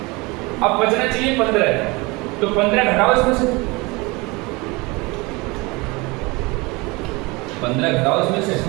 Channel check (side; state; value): left; quieter; 25.2 dB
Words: अब बचना चाहिए 15, तो 15 घटाओ इसमें से, 15 घटाओ इसमें से,